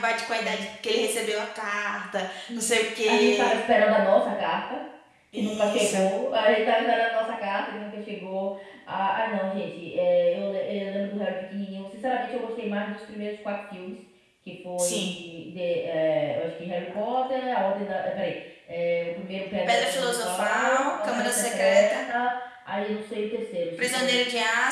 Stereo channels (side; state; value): both; identical; correlation 1.00